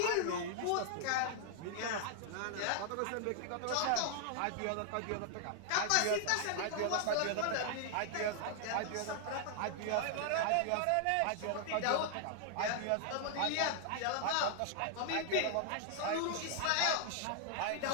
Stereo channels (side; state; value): both; different; correlation 0.00